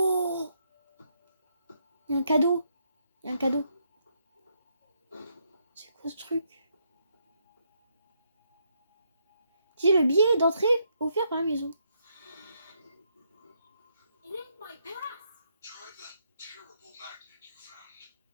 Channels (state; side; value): inverted; both; correlation -0.76